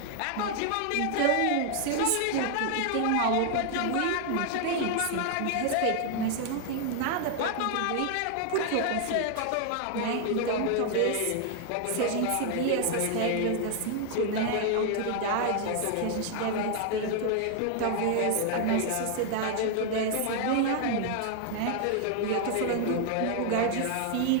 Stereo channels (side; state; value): both; different; correlation 0.00